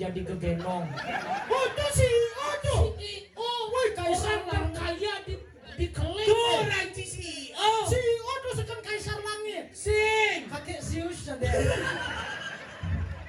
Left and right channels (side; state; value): both; identical; correlation 1.00